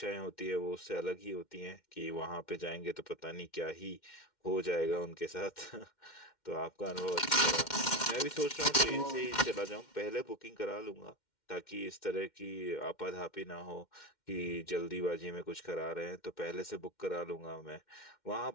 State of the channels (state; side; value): late; right; 2.1 ms